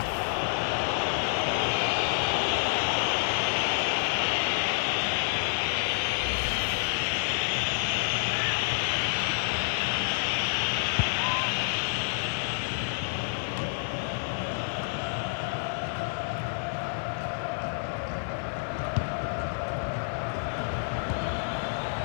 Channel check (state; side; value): silent; right; digital silence